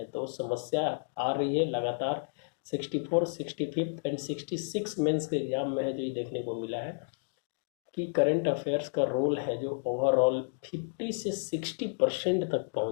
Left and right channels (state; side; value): silent; right; digital silence